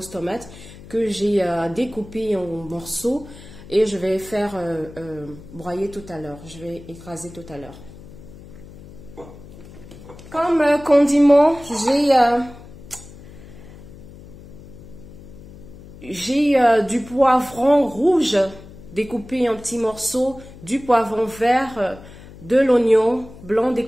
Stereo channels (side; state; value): left; noise; hum, 18 dB below the sound